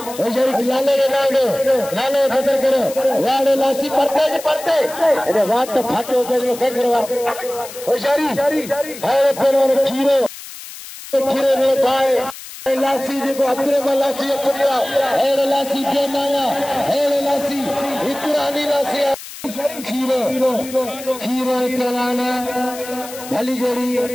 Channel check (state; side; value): noise; left; hiss, 14 dB below the sound